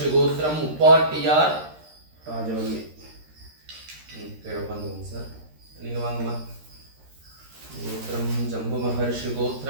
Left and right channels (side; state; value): left; late; 13 ms